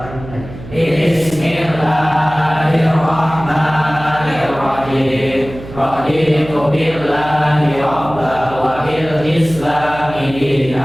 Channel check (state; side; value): noise; right; hum, 14 dB below the sound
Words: dimulai. Bismillahirrahmanirrahim. Raditu billahi rabba wa bil islami